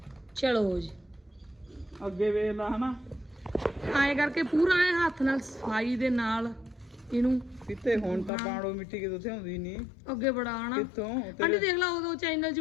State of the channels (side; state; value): right; drops out; at 8.3 s